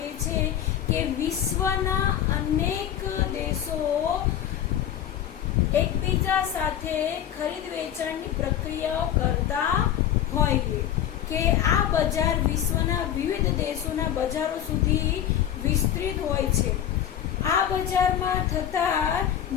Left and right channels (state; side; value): quieter; right; 10.4 dB